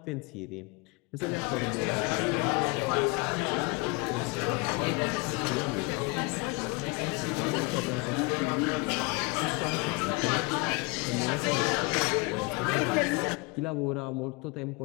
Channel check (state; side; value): quieter; right; 28.0 dB